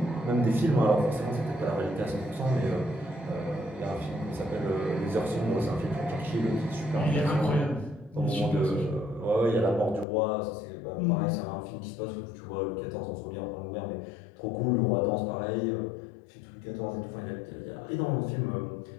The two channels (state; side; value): drops out; right; at 10.1 s